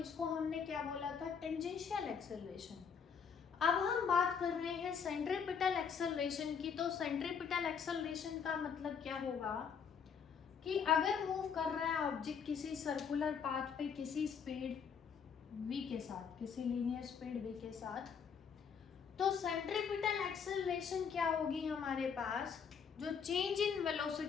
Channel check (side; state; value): right; quieter; 6.7 dB